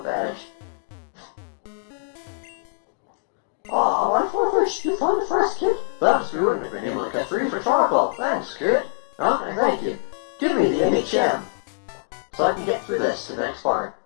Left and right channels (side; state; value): right; silent; digital silence